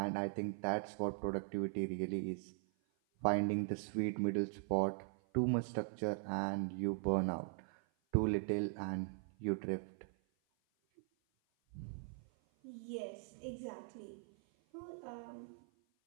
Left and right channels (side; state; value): left; silent; 51 dB below the other